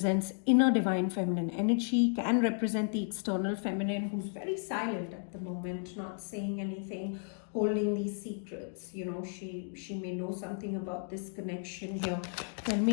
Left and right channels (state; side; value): silent; right; 56 dB below the other